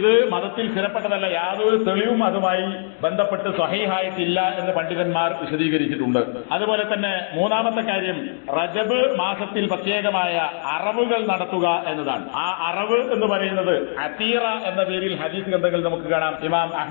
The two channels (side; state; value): right; silent; digital silence